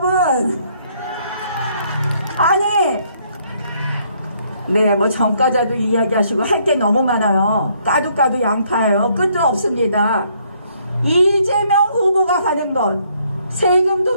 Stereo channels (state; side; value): inverted; both; correlation -0.68